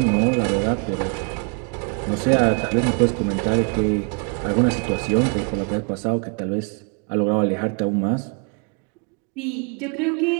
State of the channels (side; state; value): left; quieter; 37.9 dB